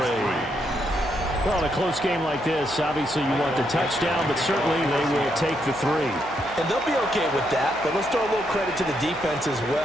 Well, in a close game like this, obviously you want the touchdown, but certainly they will take the 3. And they'll be okay with that, but let's throw a little credit to the defense as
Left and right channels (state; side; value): noise; right; hum, 18 dB below the sound